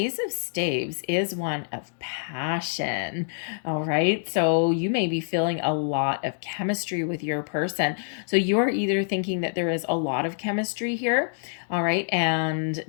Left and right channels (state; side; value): silent; right; digital silence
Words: of Staves is one of passion. All right. So you may be feeling a lot of chemistry with your person. So you're either thinking that there is a lot of chemistry here, all right, and